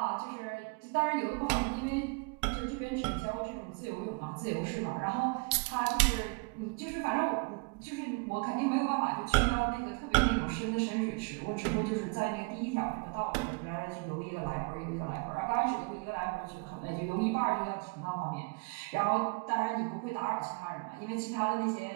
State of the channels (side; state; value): left; quieter; 31.9 dB